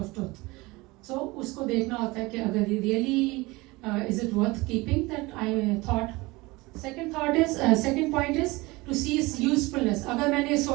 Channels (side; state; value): left; quieter; 22.5 dB